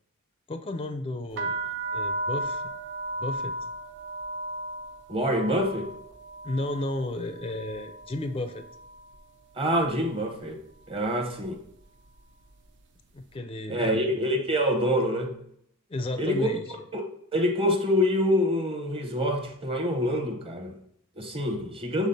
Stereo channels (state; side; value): normal; both; correlation 0.27